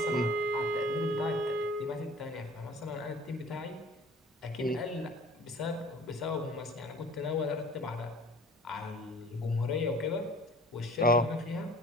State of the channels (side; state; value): both; normal; correlation 0.48